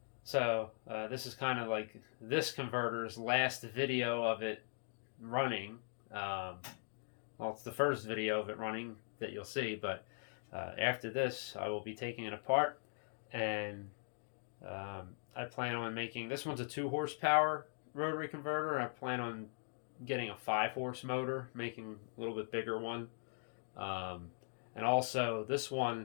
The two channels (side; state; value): right; silent; digital silence